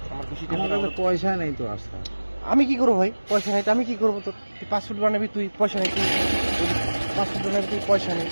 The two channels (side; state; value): both; inverted; correlation -1.00